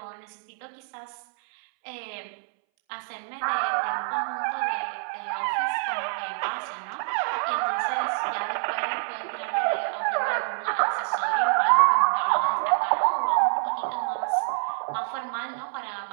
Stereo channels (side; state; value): left; silent; 60 dB below the other